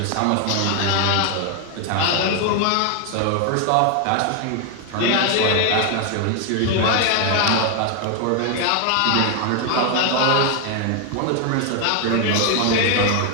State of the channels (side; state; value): both; different; correlation 0.01